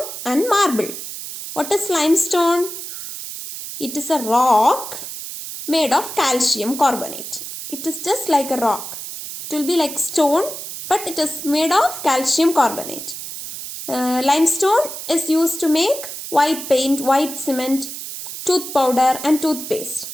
and marble. What is limestone? It is a rock made of calcium carbonate. It is just like a rock. It will be like stone, but it is made of calcium carbonate. Limestone is used to make white paint, white cement, tooth powder and toothpaste.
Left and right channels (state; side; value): noise; right; hiss, 9 dB below the sound